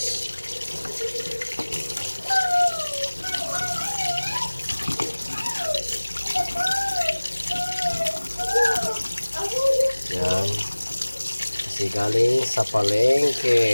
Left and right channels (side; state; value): both; inverted; correlation -1.00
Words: Yan. Kasi galing sa